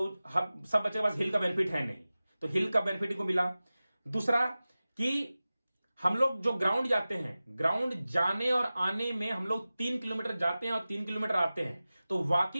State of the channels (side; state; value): both; inverted; correlation -0.96